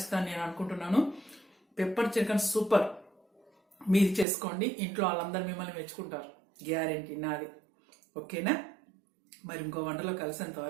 నేను అనుకుంటున్నాను. Pepper chicken super. మీరు చేసుకోండి, ఇంట్లో వాళ్ళందరూ మిమ్మల్ని మెచ్చుకుంటారు, గ్యారెంటీ నాది. ఓకేనా? మరి ఇంకో వంటలో కలిసేంత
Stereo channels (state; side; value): drops out; left; at 4.2 s